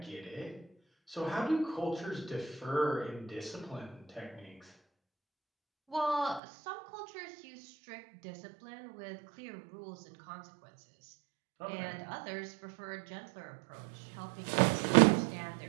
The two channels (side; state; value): left; drops out; at 6.4 s